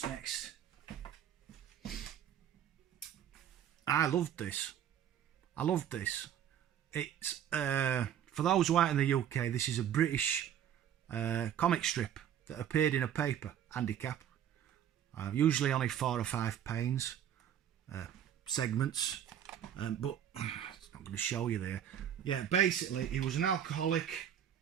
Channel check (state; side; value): quieter; left; 9.9 dB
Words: next? I loved this. It's, for those who aren't in the UK, this is a British comic strip that appeared in a paper, Handicap. Usually only 4 or 5 panes, segments, but it's not going to show you there. Yeah, basically, he was an alcoholic